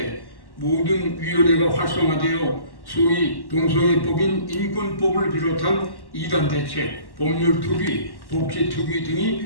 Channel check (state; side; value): late; right; 1.1 ms